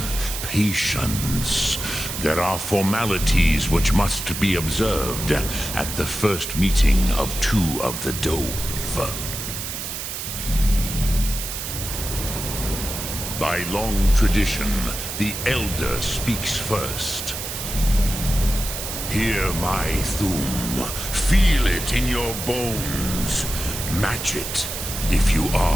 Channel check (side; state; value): right; noise; hiss, 6 dB below the sound